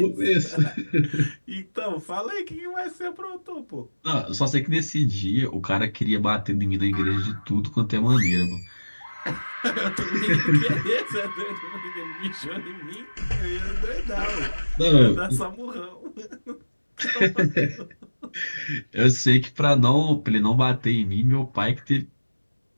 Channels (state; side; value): inverted; both; correlation -1.00